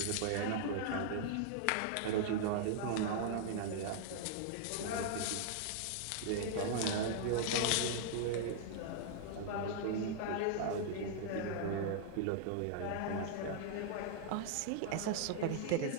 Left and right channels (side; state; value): both; different; correlation -0.01